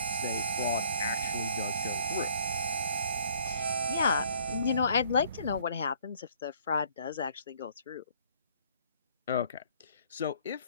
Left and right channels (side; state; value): both; inverted; correlation -0.60